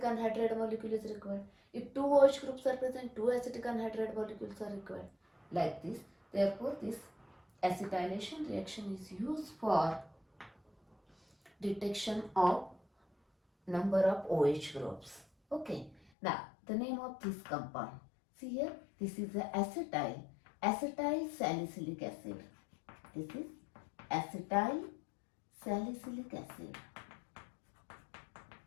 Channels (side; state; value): right; drops out; at 16.0 s